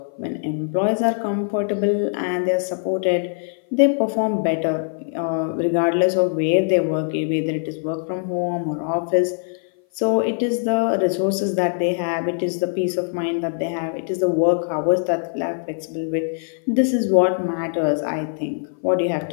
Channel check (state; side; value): silent; right; 57 dB below the other